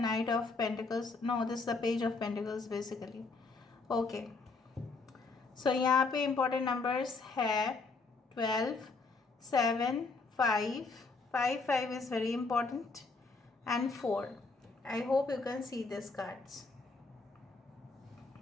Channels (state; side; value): quieter; right; 4.0 dB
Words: knight of pentacles, no this the page of pentacles basically. Okay, so यहाँ पे important numbers है 12, 7, 5 is very important and 4. I hope you can see these cards.